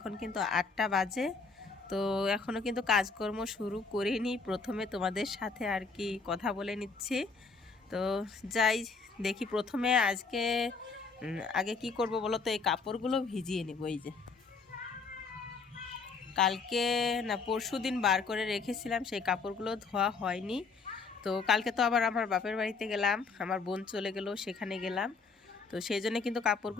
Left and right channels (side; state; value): right; quieter; 4.6 dB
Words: কিন্তু 8টা বাজে। তো এখনও কিন্তু কাজকর্ম শুরু করিনি। প্রথমে তোমাদের সাথে আর কি কথা বলে নিচ্ছি। তো যাই দেখি প্রথমে আজকে আগে কি করব বলো তো, এই কাপড়গুলো ভিজিয়ে নেব। এই যে কালকে না পরশু দিন বার করে রেখেছিলাম, সেই কাপড়গুলো ধোয়া হয়নি। তো কালকে তো আবার আমার বাপের বাড়িতে গেলাম, আমার বোন চলে গেল, সেখানে গেলাম। তো সেই জন্য কিন্তু